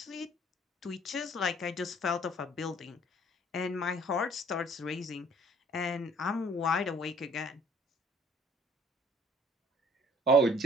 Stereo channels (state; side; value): normal; both; correlation 0.56